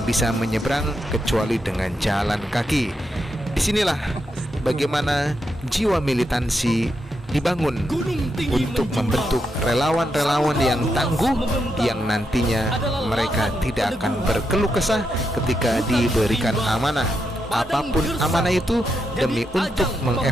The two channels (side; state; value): both; normal; correlation 0.83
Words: bisa menyeberang kecuali dengan jalan kaki. Disinilah bagaimana jiwa militansi dibangun untuk membentuk relawan-relawan yang tangguh, yang nantinya mereka tidak akan berkeluh kesah ketika diberikan amanah. Apapun amanah itu, demi untuk